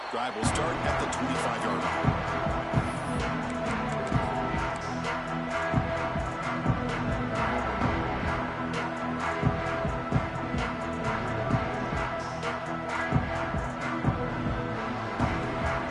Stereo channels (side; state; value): both; identical; correlation 1.00